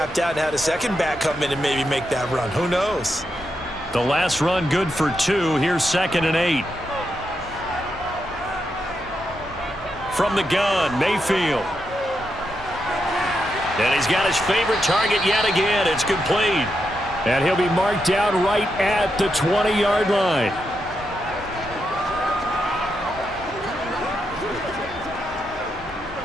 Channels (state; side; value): normal; both; correlation 0.84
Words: out and had a second back come in and maybe make that run. Who knows? The last run good for 2. Here's 2nd and 8. From the gun, Mayfield. And he's got his favorite target yet again. It's complete. And he'll be marked down right at the 20-yard line.